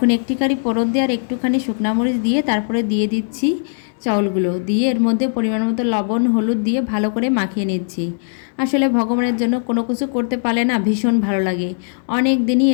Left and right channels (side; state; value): right; silent; digital silence